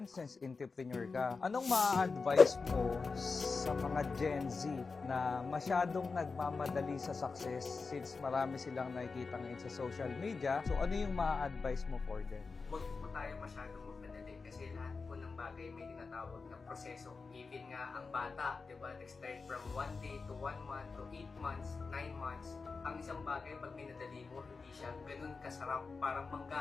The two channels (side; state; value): right; quieter; 4.4 dB